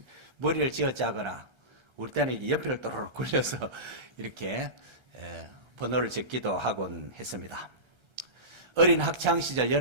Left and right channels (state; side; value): late; left; 1.3 ms